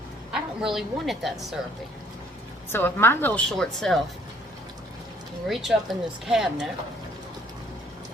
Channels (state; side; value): normal; both; correlation 0.60